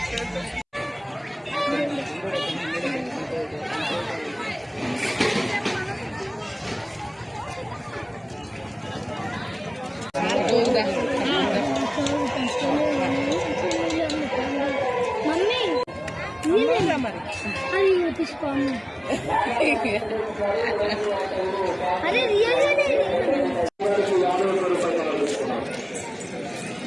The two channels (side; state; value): both; identical; correlation 1.00